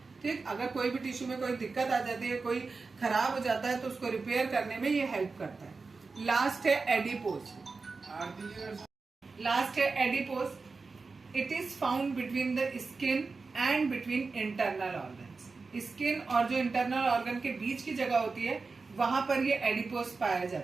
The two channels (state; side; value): quieter; left; 4.2 dB